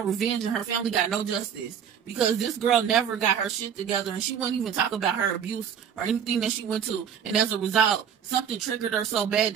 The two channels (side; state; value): left; quieter; 8.2 dB